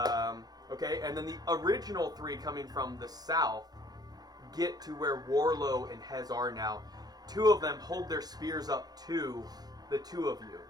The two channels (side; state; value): left; late; 0.19 ms